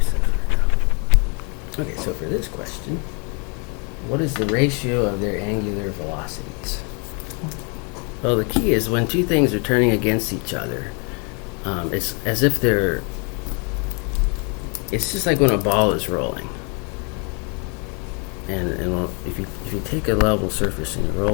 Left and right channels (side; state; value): right; quieter; 35.2 dB